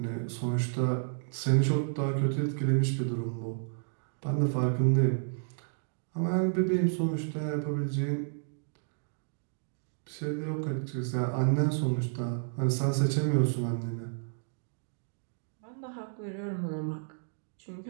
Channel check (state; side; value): silent; left; digital silence